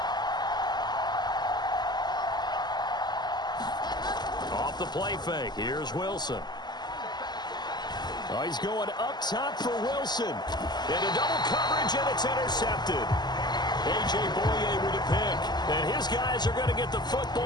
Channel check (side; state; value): right; late; 0.21 ms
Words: Off the play fake, here's Wilson. Oh, he's going up top for Wilson. Into double coverage, and it's intercepted. A.J. Boye with a pick. And his guys are going to get the